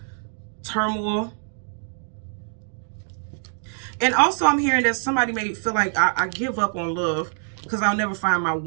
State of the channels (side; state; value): left; silent; digital silence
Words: turmoil. And also I'm hearing that somebody may feel like I give up on love because I'll never find my